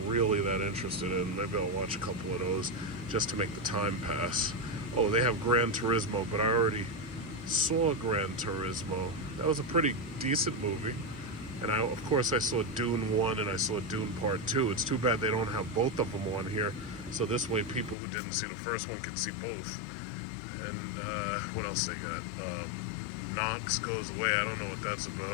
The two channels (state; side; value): drops out; right; at 17.9 s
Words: really that interested in. Maybe I'll watch a couple of those just to make the time pass. Oh, they have Gran Turismo, but I already saw Gran Turismo. That was a pretty decent movie. And of course I saw Dune 1 and I saw Dune Part 2. It's too bad they don't have both of them on here. So this way people who didn't see the first one can see both. And what else they got? Knox Goes Away. I don't know what that's